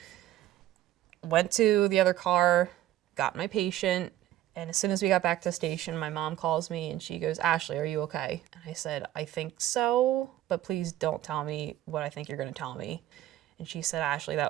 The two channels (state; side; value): quieter; left; 13.7 dB